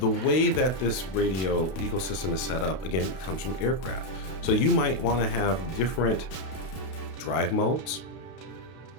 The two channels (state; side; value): late; right; 32 ms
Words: way that this radio ecosystem is set up, again, it comes from aircraft. So you might want to have different drive modes,